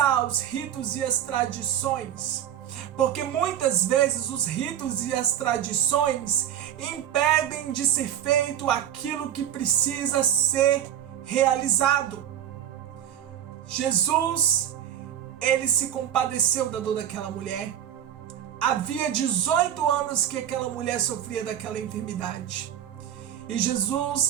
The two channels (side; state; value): left; quieter; 10.4 dB